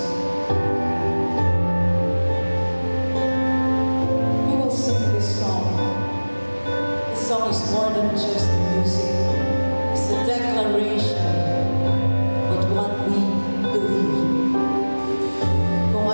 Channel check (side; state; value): both; inverted; correlation -1.00